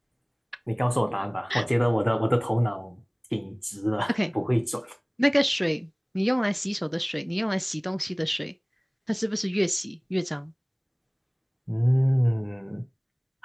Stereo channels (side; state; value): both; identical; correlation 1.00